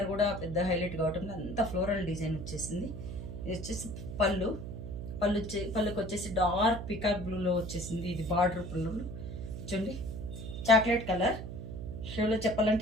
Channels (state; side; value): noise; right; hum, 8 dB below the sound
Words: కూడా పెద్ద హైలైట్ కావటం, అంతా ఫ్లోరల్ డిజైన్ వచ్చేసింది. ఇది వచ్చేసి పళ్ళుకి వచ్చేసి డార్క్ పికాక్ బ్లూలో వచ్చేసింది. ఇది బార్డర్ పళ్ళు చూడండి, చాక్లెట్ కలర్ షేడ్లో